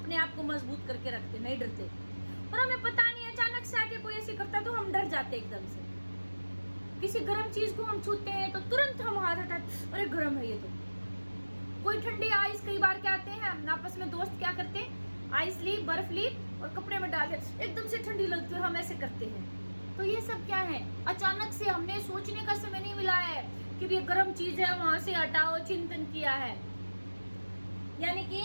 आप को मजबूत करके रखते, नहीं डरते, और हमें पता नहीं अचानक से आके कोई ऐसे करता तो हम डर जाते एकदम से। किसी गर्म चीज को हम छूते हैं तो तुरंत हम हाथ हटाते, अरे गर्म है ये तो। कोई ठंडी आइस, कई बार क्या आते हैं आपस में दोस्त क्या करते हैं, आइस ली, बर्फ ली और कपड़े में डाल दे, एकदम से ठंडी लगती है, हम ऐसे करते हैं। तो ये सब क्या है? अचानक से, हमने सोचने का समय नहीं मिला है कि ये गर्म चीज है, वहां से हटाओ, चिंतन किया है। यानी कि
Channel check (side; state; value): both; inverted; correlation -1.00